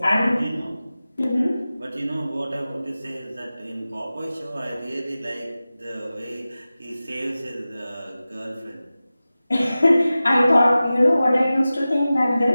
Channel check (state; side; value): inverted; both; correlation -0.96